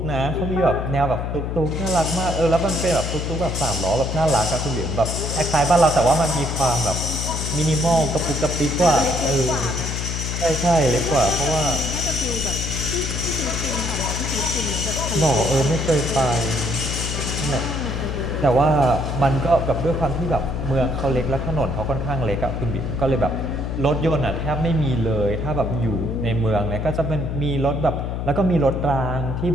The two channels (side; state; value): left; noise; hum, 3 dB below the sound